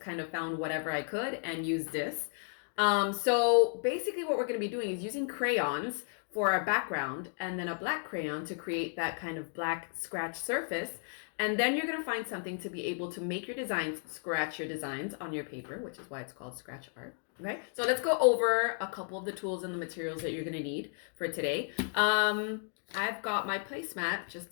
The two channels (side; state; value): right; silent; 55 dB below the other